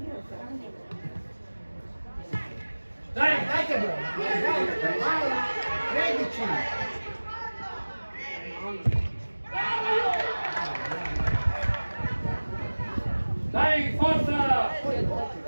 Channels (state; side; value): inverted; both; correlation -1.00